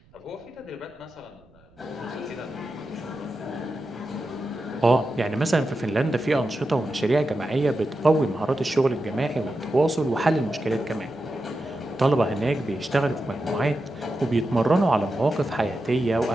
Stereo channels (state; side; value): noise; right; rumble, 29 dB below the sound